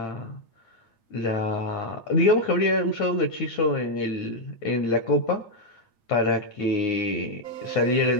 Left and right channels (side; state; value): right; late; 8.9 ms